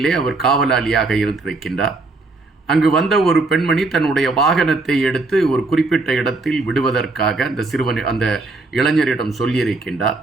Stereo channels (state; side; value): quieter; left; 3.3 dB